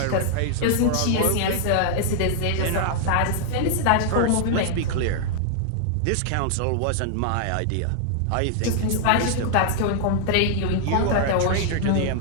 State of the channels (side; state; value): both; different; correlation -0.01